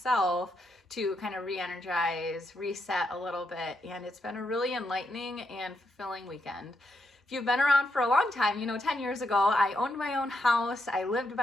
to kind of re-energize, reset a little bit, and it's been a really enlightening and fulfilling weekend. If you've been around for a long time, 10 years ago, I owned my own house. I lived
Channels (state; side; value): normal; both; correlation 0.81